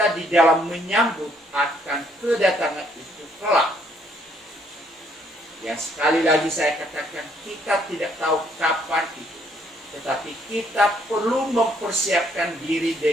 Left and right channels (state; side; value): normal; both; correlation 0.67